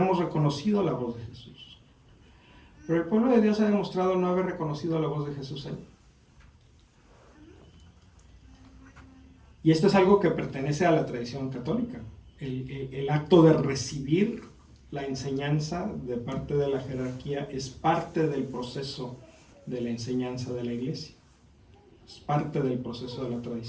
reconocido la voz de Jesús. Pero el pueblo de Dios ha demostrado no haber reconocido la voz de Jesús ahí. Y esto es algo que pertenece a la tradición católica. El acto de recibir la enseñanza de parte de la jerarquía es parte del proceso de la enseñanza de la iglesia. Es parte del proceso de la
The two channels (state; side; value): identical; both; correlation 1.00